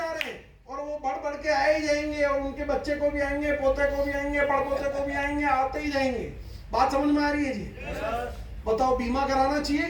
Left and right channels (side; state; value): both; identical; correlation 1.00